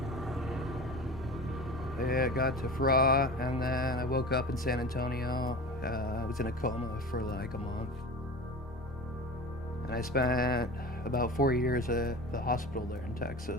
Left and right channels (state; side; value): normal; both; correlation 0.34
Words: I got to FRA, and then I woke up in San Antonio. I was in a coma for like a month. And I spent about 4 years at the hospital there in